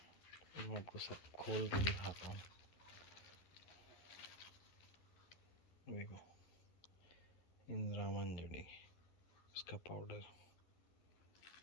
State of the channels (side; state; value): right; late; 11 ms